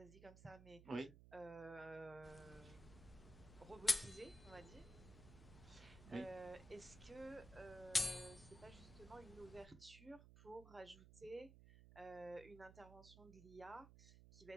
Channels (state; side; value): noise; right; hum, 15 dB below the sound